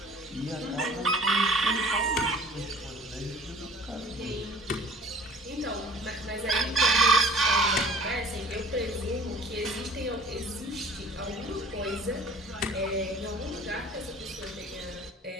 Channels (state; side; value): normal; both; correlation 0.49